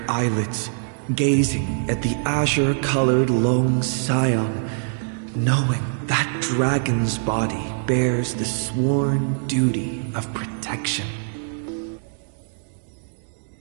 eyelids, gazing at the azure-colored lone scion, knowing that dragon's body bears the sworn duty of protection.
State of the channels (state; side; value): silent; left; digital silence